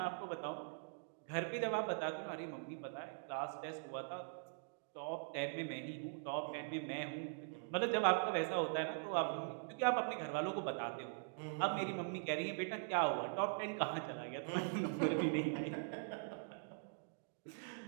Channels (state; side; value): silent; left; digital silence